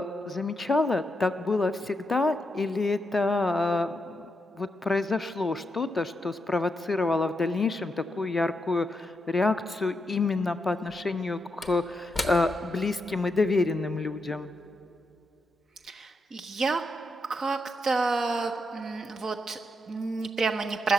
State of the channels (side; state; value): both; normal; correlation 0.84